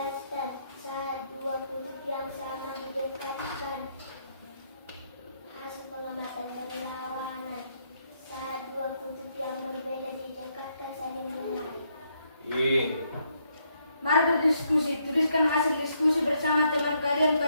saat dua kutub yang sama didekatkan. Hasil pengamatan berlawanan. berdiskusi. Tuliskan hasil diskusi bersama teman kalian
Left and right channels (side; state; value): both; inverted; correlation -0.74